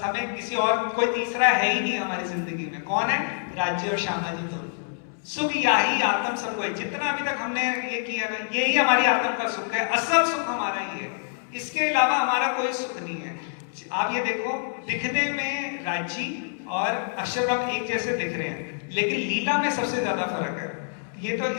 हमें किसी और, कोई तीसरा है ही नहीं हमारी जिंदगी में। कौन है? राज्य और श्यामा जी दोए। सुख याही आत्म सबको, जितना अभी तक हमने ये किया ना, यही हमारी आत्म का सुख है, असल सुख हमारा ही है। इसके अलावा हमारा कोई सुख नहीं है। आप ये देखो, दिखने में राजी और अक्षर ब्रह्म एक जैसे दिख रहे हैं, लेकिन लीला में सबसे ज्यादा फर्क है। ये तो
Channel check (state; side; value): silent; right; 61 dB below the other